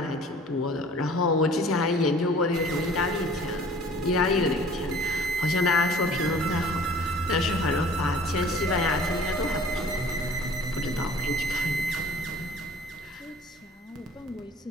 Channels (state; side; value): normal; both; correlation 0.49